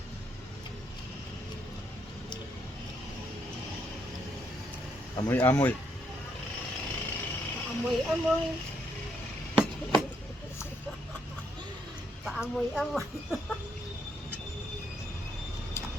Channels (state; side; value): normal; both; correlation 0.75